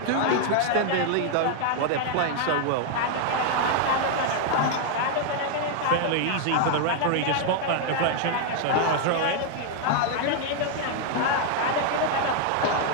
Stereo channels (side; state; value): both; different; correlation 0.00